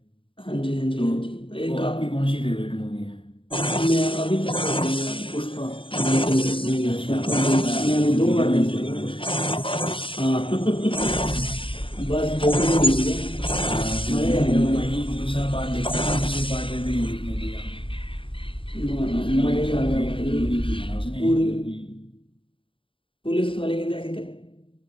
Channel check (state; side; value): late; right; 0.25 ms